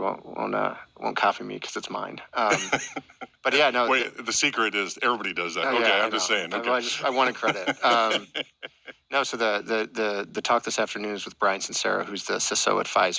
copy me because it's mine. But yeah, no. Wait, the secret is everybody does that. Oh, okay, yeah, I'm just saying. Okay. I wanted credit. No, so the talk this afternoon is with Brian Sincera, who's the CISO at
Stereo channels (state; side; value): identical; both; correlation 1.00